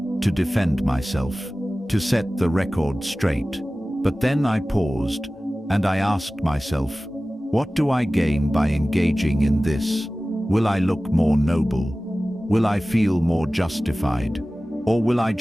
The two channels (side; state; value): both; normal; correlation 0.97